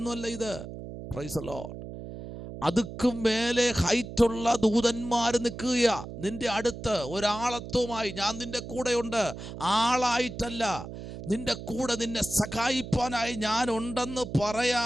ഇത്. Price the Lord. അതുക്കും മേലെ ഹൈറ്റുള്ള ദൂതന്മാർ നിൽക്കുക നിന്റെ അടുത്ത് ഒരാളത്വമായി. ഞാൻ നിന്റെ കൂടെയുണ്ട്, ആളായിട്ടല്ല, നിന്റെ കൂടെ നിന്നെ സഹായിപ്പാനായി ഞാൻ ഉണ്ടെന്ന്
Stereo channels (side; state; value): right; noise; hum, 10 dB below the sound